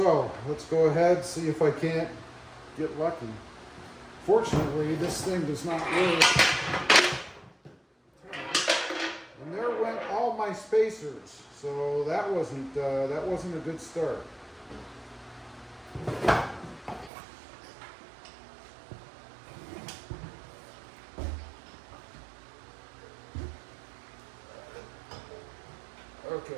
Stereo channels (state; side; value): drops out; left; at 17.1 s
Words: let's go ahead and see if I can't get lucky. Fortunately, this thing does not work. And there went all my spacers, so that wasn't a good start. Okay.